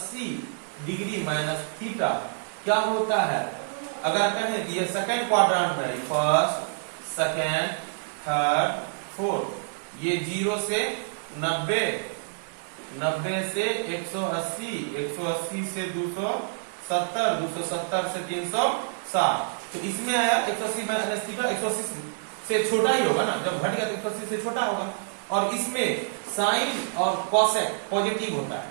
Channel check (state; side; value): silent; left; digital silence